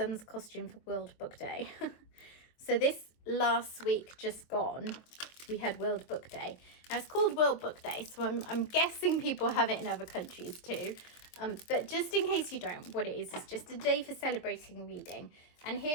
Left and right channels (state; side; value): late; right; 23 ms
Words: costume for World Book Day. So this last week just gone, we had World Book Day. Now it's called World Book Day, so I'm guessing people have it in other countries too. But just in case you don't, what it is just a day for celebrating reading. And